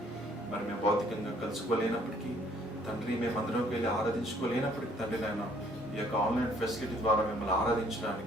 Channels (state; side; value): normal; both; correlation 0.62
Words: మరి మేము భౌతికంగా కలుసుకోలేనప్పటికీ తండ్రి, మేము అందరం వెళ్ళి ఆరాధించుకోలేనప్పటికీ తండ్రి నాయన, ఈ యొక్క ఆన్లైన్ ఫెసిలిటీ ద్వారా మిమ్మల్ని